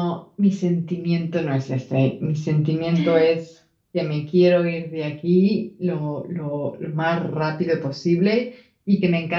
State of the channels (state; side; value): identical; both; correlation 1.00